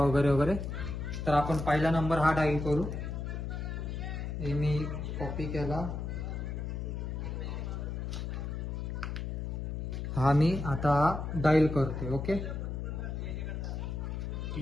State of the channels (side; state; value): left; noise; hum, 4 dB below the sound